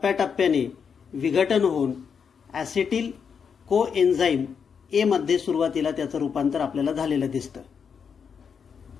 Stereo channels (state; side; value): quieter; right; 6.6 dB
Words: विघटन होऊन ॲसेटिल कोएन्झाईम ए मध्ये सुरुवातीला त्याचं रूपांतर आपल्याला झालेलं दिसतं.